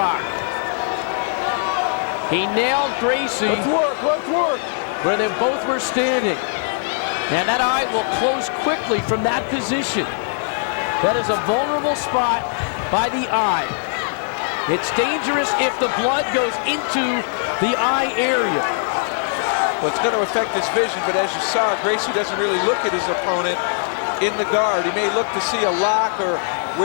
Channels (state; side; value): silent; right; 65 dB below the other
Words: He nailed Gracie. Let's work. Where they both were standing. And that eye will close quickly from that position. That is a vulnerable spot by the eye. It's dangerous if the blood goes into the eye area. Well, it's going to affect his vision, but as you saw, Gracie doesn't really look at his opponent in the guard. He may look to see a lock or